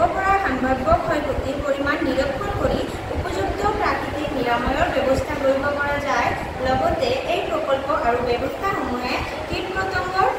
পৰা সম্ভাৱ্য ক্ষয়ক্ষতিৰ পৰিমাণ নিৰীক্ষণ কৰি উপযুক্ত প্ৰাকৃতিক নিৰাময়ৰ ব্যৱস্থা কৰিব পৰা যায়। লগতে এই প্ৰকল্প আৰু ব্যৱস্থাসমূহে কীট-পতংগৰ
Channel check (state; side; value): identical; both; correlation 1.00